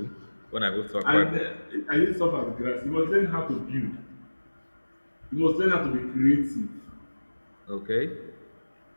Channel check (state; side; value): inverted; both; correlation -1.00